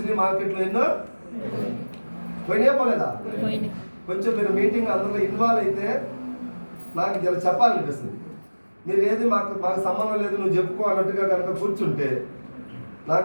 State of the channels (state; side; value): inverted; both; correlation -1.00